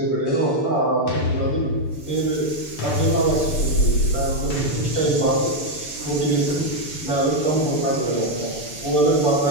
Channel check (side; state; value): right; late; 6.9 ms